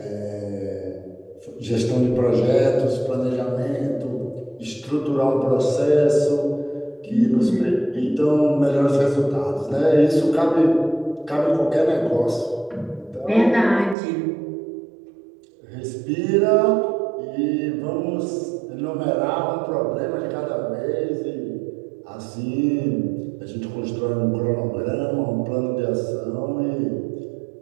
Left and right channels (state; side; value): drops out; left; at 14.0 s